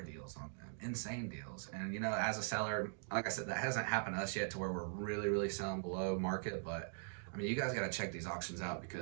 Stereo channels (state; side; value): silent; left; digital silence